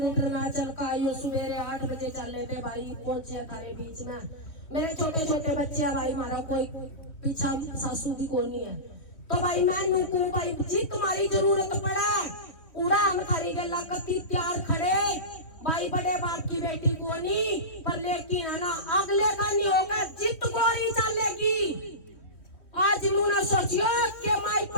ना चल का आई, सवेरे 8 बजे चले थे भाई, पहुंचे थारे बीच में। मेरे छोटे छोटे बच्चे भाई, हमारा कोई पीछा सासू भी को नहीं है, तो भाई मैं नूकू भाई जी तुम्हारी जरूरत पड़े उड़ा हम थारी गला कती तैयार खड़े भाई, बड़े बाप की बेटी को नहीं, पर लेकिन है ना अगले का नहीं होगा, जित गोली चलेगी। आज ना सोचियो कि माइक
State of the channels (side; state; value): right; late; 3.1 ms